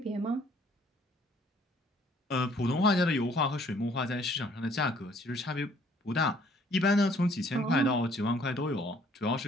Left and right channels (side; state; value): both; normal; correlation 0.60